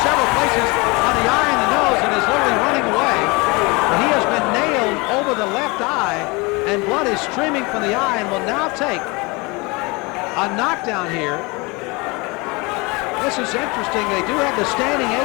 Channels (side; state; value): right; quieter; 26.3 dB